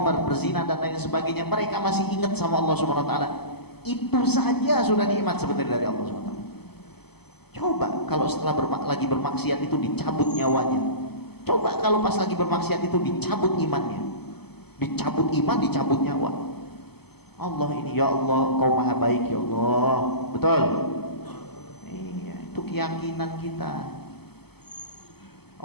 berzina dan lain sebagainya, mereka masih ingat sama Allah Subhanahu wa taala. Itu saja sudah nikmat sebenarnya dari Allah Subhanahu wa taala. Coba kalau setelah lagi bermaksiat itu dicabut nyawanya. Coba kalau pas lagi bermaksiat itu dicabut imannya, dicabut iman, dicabut nyawa. Allah ini, ya Allah, Kau maha baik ya Allah. Betul? Iya, itu keyakinan kita.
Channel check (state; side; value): late; right; 0.97 ms